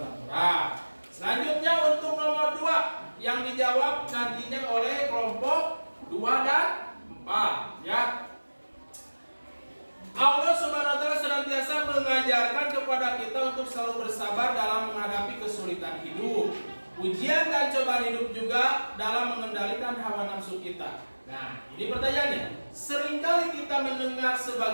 6 orang. Selanjutnya untuk nomor 2 yang dijawab nantinya oleh kelompok 2 dan 4 ya. Allah Subhanahu wa taala senantiasa mengajarkan kepada kita untuk selalu bersabar dalam menghadapi kesulitan hidup. Ujian dan cobaan hidup juga dalam mengendalikan hawa nafsu kita. Nah, ini pertanyaannya. Seringkali kita mendengar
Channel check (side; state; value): both; inverted; correlation -1.00